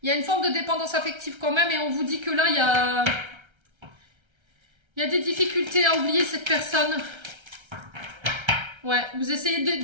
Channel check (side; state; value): left; late; 1.3 ms